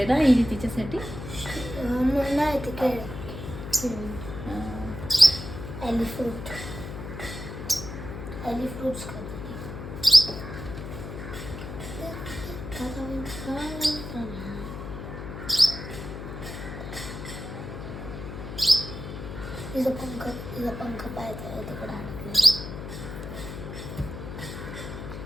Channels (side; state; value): left; noise; hum, 8 dB below the sound